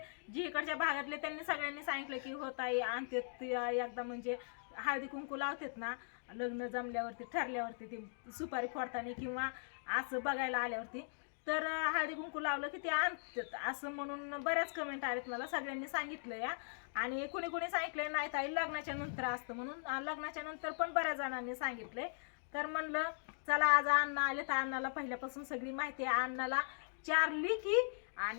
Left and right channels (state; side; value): silent; right; digital silence